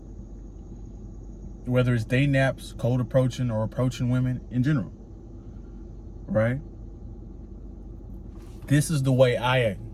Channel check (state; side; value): identical; both; correlation 1.00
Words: Whether it's day naps, cold approaching, or approaching women in general, right? This is the way